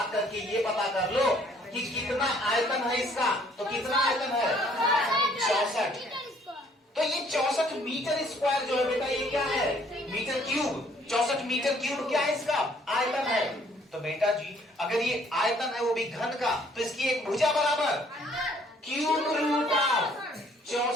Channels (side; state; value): both; normal; correlation 0.62